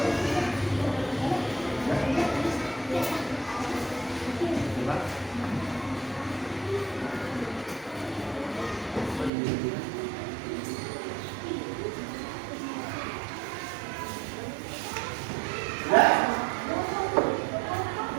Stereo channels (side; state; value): left; drops out; at 9.3 s